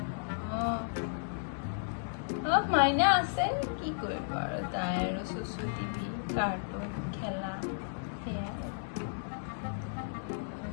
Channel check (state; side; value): silent; right; digital silence